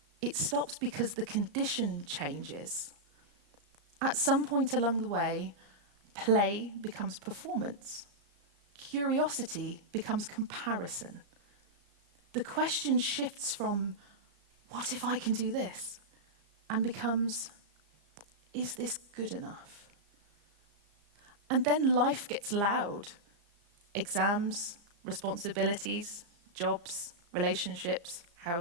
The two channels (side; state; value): left; late; 35 ms